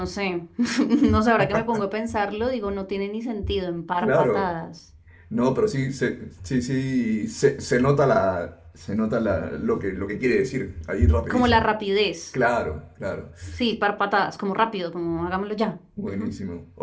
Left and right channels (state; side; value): identical; both; correlation 1.00